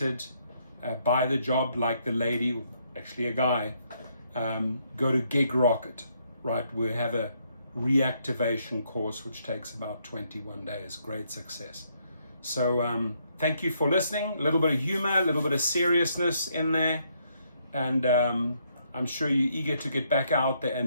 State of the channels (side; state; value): both; inverted; correlation -0.73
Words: by the job, like the lady, actually a guy, go to Gig Rocket, right? We have a reactivation course which takes about 21 days. Great success. So thank you for listening. A little bit of humor, a little bit of seriousness in there, and I'm sure you're eager to get back out there